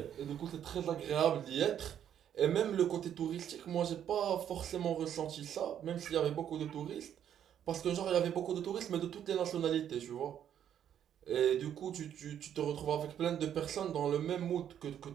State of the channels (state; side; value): quieter; left; 9.7 dB